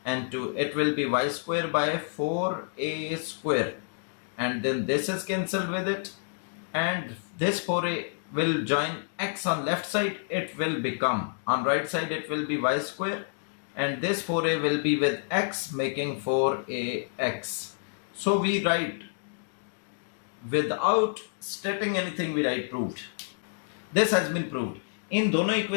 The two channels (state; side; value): silent; right; digital silence